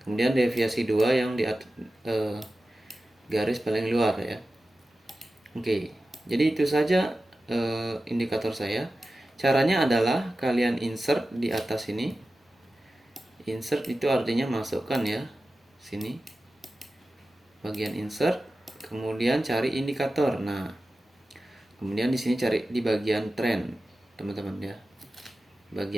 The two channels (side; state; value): both; normal; correlation 0.94